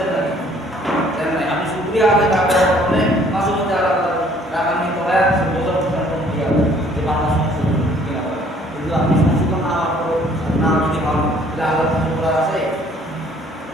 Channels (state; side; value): normal; both; correlation 0.59